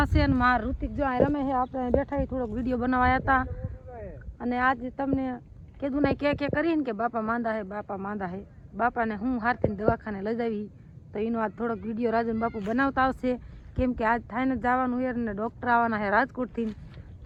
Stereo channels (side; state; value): both; identical; correlation 1.00